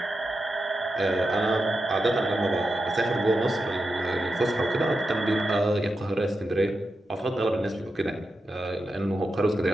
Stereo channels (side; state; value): both; normal; correlation 0.89